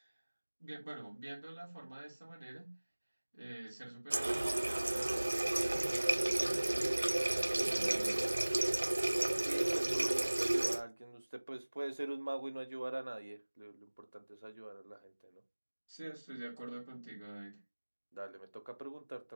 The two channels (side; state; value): both; inverted; correlation -1.00